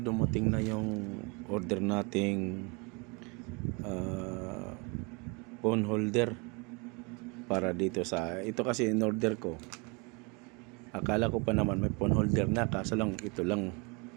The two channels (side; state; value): left; quieter; 30.2 dB